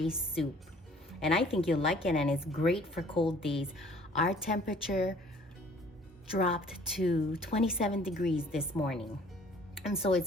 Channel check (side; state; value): both; normal; correlation 0.54